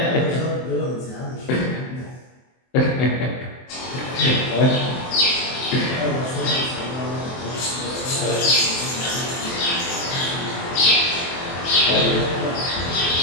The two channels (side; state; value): right; late; 23 ms